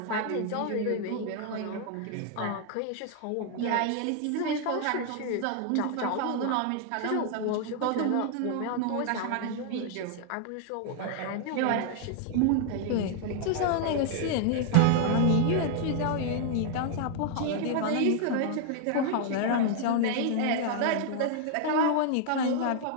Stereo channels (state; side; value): different; both; correlation 0.00